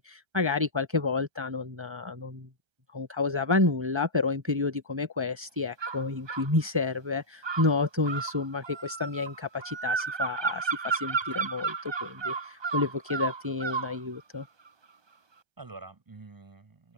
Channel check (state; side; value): late; left; 1.3 ms